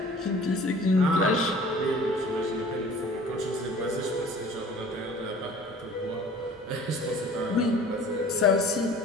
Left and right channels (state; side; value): normal; both; correlation 0.47